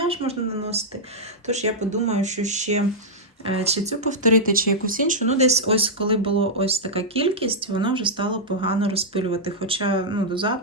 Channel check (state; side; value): normal; both; correlation -0.07